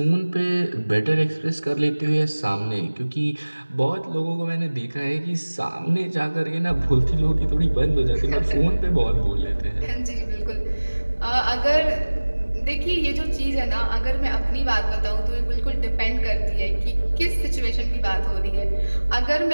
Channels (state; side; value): inverted; both; correlation -1.00